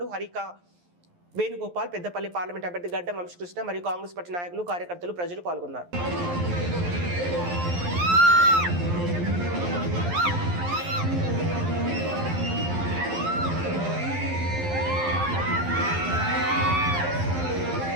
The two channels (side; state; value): left; late; 11 ms